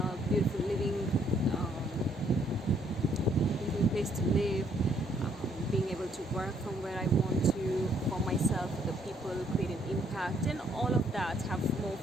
beautiful living place to live, being able to work from where I want to, for myself, for the people, create an impact, and all of that, have more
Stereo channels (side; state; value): both; normal; correlation 0.68